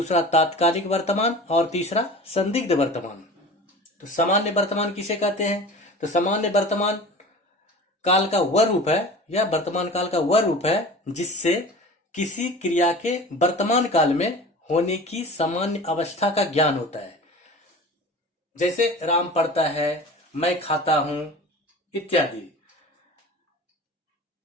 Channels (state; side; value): normal; both; correlation 0.37